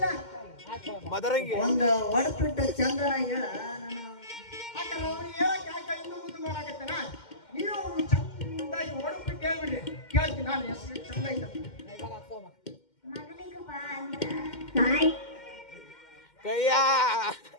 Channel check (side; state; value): right; late; 2.1 ms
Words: ಒಂದು ಹೊಡ್ಬಿಟ್ಟು ಚಂದನ ಹೇಳ. ನಾನು ಯಾಕಂದ್ರೆ ಅವ್ನು ಹೇಳಕ್ ಯಾಕೆ ಇನ್ನೂ ಮುಂದೆ ಮಾಡಾಕತ್ತೇನ, ನೀವು ಚಂದಾಗಿ ಹೊಡ್ಬಿಟ್ಟು ಹೇಳ್ಬಿಡ್ರಿ, ಕೇಳ್ತೀನಿ ನಾನು ಹೆಸರು ಚಂದ ಐತ. ಮಗನಿಗೆ ಬಾ ಅಂತ